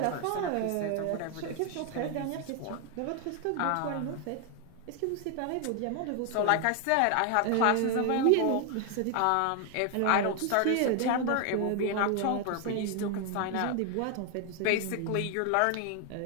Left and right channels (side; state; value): both; different; correlation 0.00